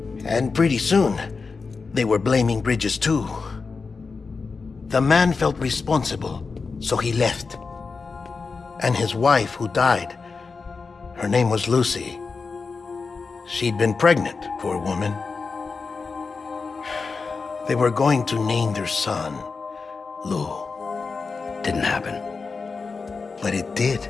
And pretty soon, they were blaming Bridges too. The man felt responsible, so he left. And his wife, who died, her name was Lucy. She'd been pregnant, poor woman. They were going to name their son Lou. Didn't happen. But it did.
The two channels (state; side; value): quieter; right; 4.6 dB